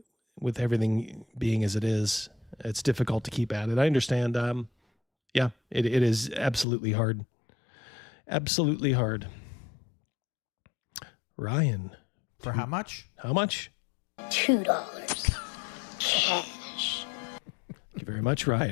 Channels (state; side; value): drops out; right; at 6.7 s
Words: being as it is? It's difficult to keep at it. I understand. Yeah, it is absolutely hard. Absolutely hard. Ryan. For how much? How much? $2 cash. Thank you very much,